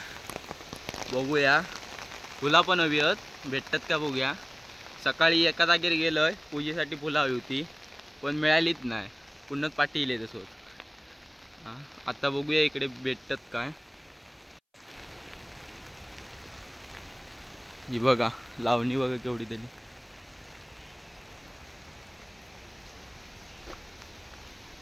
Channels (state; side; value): identical; both; correlation 1.00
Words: बघूया फुला पण हवी आहेत, भेटतात का बघूया. सकाळी एका जागेवर गेलोय पूजेसाठी फुलं हवी होती पण मिळालीच नाही, पुन्हा पाठी इले तसोच. आता बघूया इकडे भेटतात काय. ही बघा लावणी बघा केवढी तरी.